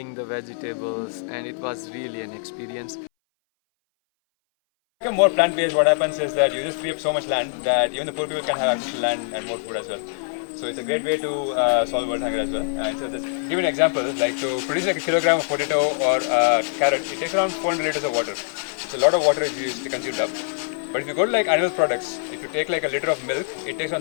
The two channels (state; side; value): silent; right; 60 dB below the other